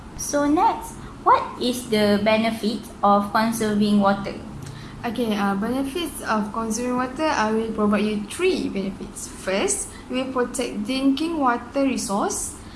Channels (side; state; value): both; identical; correlation 1.00